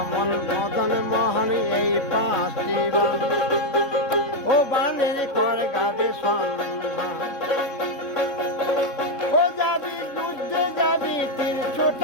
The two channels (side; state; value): right; late; 3.6 ms